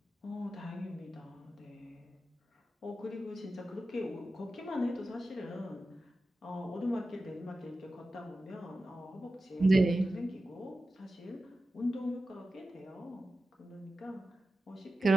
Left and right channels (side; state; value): both; normal; correlation 0.93